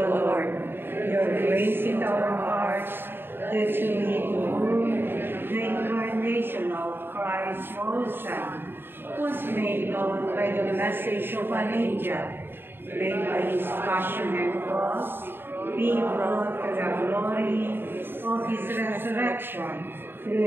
Lord, your grace in our hearts, that we behold the incarnation of Christ your Son, was made known by the message of an angel, made by his passion and cross, being brought to the glory of his resurrection,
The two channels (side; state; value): left; late; 0.10 ms